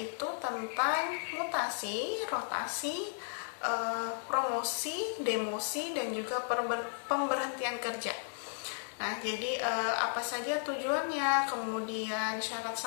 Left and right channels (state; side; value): silent; right; 55 dB below the other